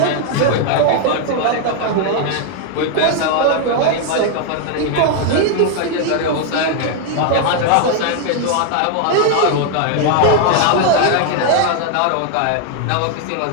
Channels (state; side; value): different; both; correlation 0.00